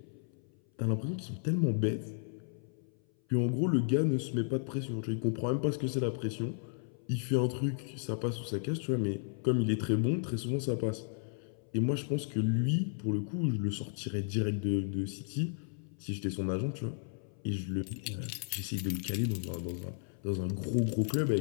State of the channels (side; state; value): right; silent; 55 dB below the other